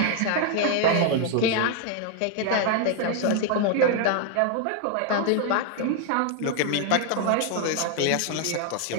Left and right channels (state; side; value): different; both; correlation 0.00